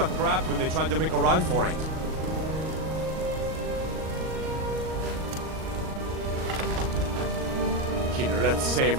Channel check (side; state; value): left; late; 38 ms